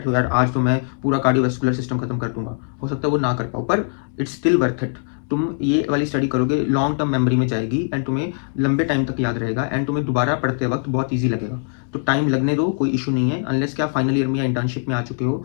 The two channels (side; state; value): right; silent; 65 dB below the other